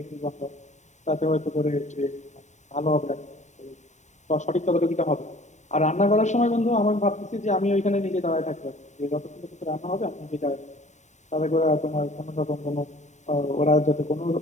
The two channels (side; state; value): right; late; 0.34 ms